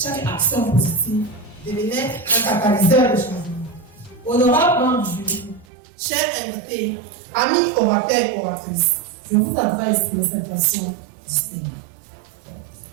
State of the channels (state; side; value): drops out; left; at 5.7 s